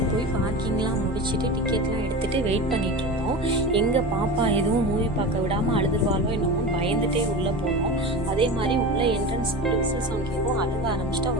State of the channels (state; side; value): normal; both; correlation 0.29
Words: போய் பார்க்கிங்லாம் முடிச்சுட்டு டிக்கெட்லாம் எடுத்துகிட்டு வெயிட் பண்ணிகிட்டு இருந்தோம். எங்கள் பாப்பா எதுவும் மூவி பார்க்க விடாமல் அழுதுருவாளோ என்னமோ பயந்துகிட்டே உள்ளே போனோம். அதே மாதிரி உள்ளே என்ட்ரன்ஸ் விசில் சவுண்ட் கேட்கும். அழுக ஆரம்பிச்சிட்டு